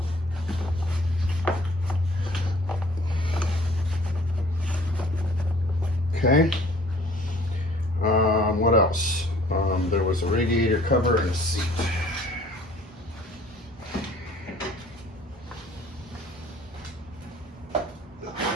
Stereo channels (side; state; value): both; normal; correlation 0.53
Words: Okay. What else? There was a radiator cover and a seat.